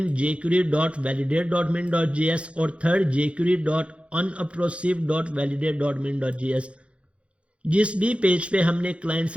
jQuery.validate.min.js और थर्ड jQuery.unobtrusive.validate.min.js। जिस भी पेज पे हमने क्लाइंट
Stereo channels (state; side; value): late; left; 0.060 ms